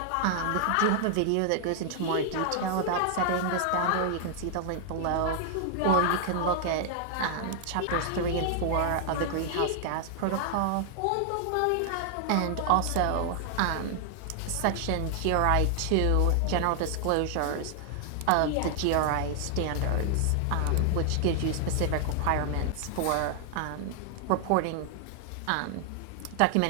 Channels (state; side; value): different; both; correlation 0.00